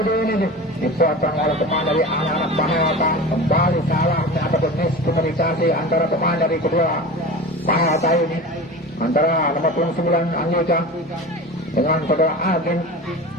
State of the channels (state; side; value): normal; both; correlation 0.32